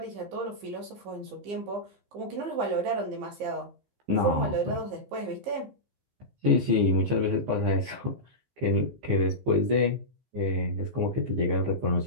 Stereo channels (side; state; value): left; late; 15 ms